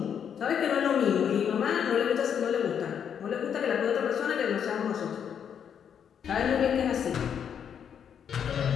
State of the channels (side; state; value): right; quieter; 8.1 dB